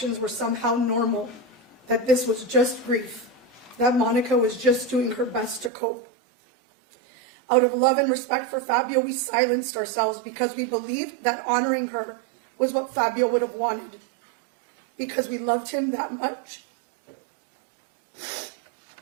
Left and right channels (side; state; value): left; drops out; at 5.7 s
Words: were somehow normal, that this was just grief, that Monica was just doing her best to cope. Out of love and respect for Fabio, we silenced ourselves because we believed that honoring her was what Fabio would have wanted, because we loved him that much.